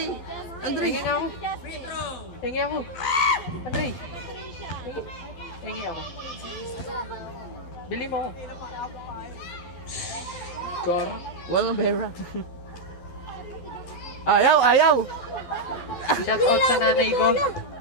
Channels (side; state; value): right; late; 12 ms